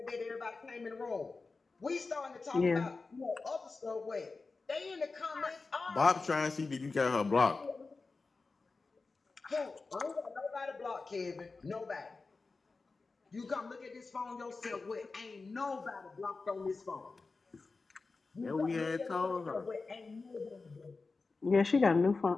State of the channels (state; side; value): quieter; right; 4.0 dB